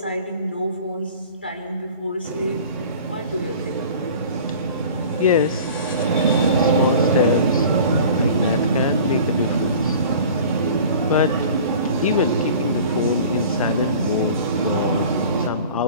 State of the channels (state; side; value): inverted; both; correlation -0.43